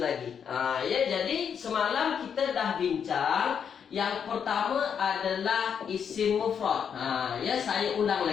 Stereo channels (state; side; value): quieter; right; 7.5 dB